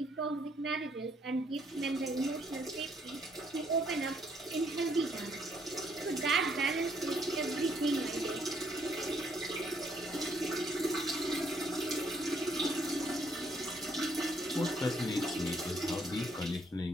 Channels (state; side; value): normal; both; correlation 0.69